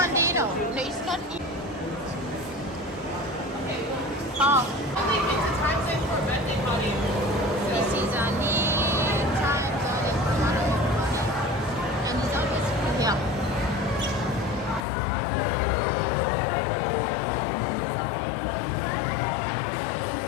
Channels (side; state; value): right; drops out; at 14.9 s